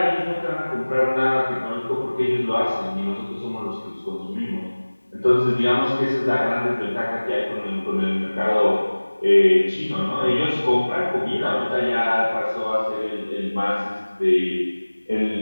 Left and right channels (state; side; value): inverted; both; correlation -1.00